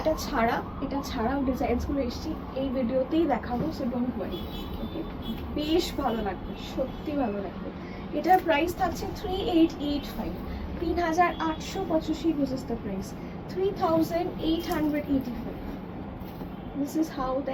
এটা ছাড়াও ডিজাইনসগুলো এসেছি, এই ভিডিওতেই দেখাবো। সো ডোন্ট ওয়ারি, ওকে? বেশ ভালো লাগবে, সত্যি ভালো লাগবে। এটার প্রাইস থাকছে 3885, 3885 বুঝেছ the price 3885। This is how the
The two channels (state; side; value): identical; both; correlation 1.00